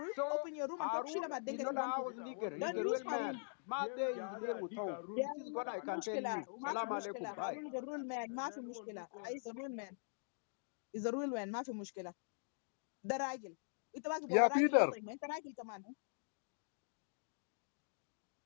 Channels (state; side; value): silent; right; digital silence